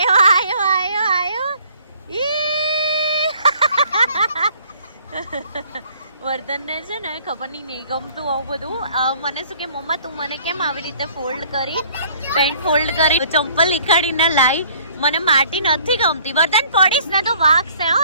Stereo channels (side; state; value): both; inverted; correlation -0.57